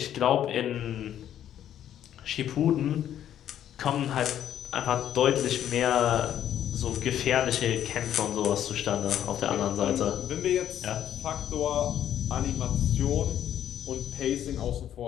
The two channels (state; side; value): quieter; right; 10.7 dB